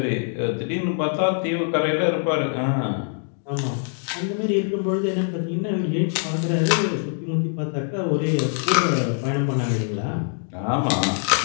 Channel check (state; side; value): silent; right; 55 dB below the other